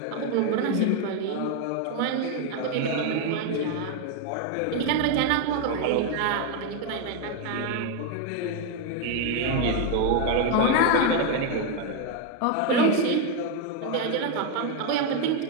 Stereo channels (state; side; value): different; both; correlation 0.01